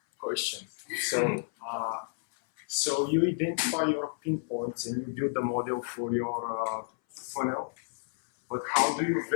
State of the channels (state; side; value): silent; right; 57 dB below the other